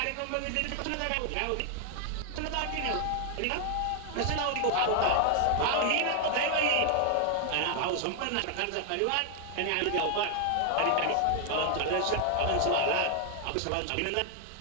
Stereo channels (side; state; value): both; different; correlation 0.00